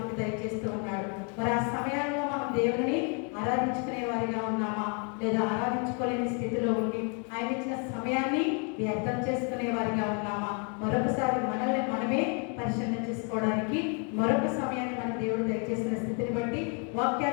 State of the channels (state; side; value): quieter; right; 37.9 dB